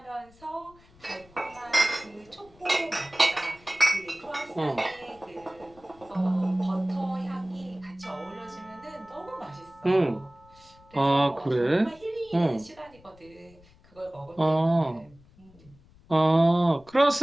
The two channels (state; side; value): noise; left; rumble, 26 dB below the sound